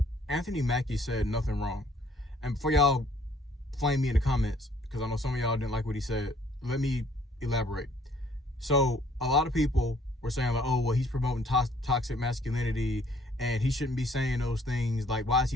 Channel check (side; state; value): both; normal; correlation 0.61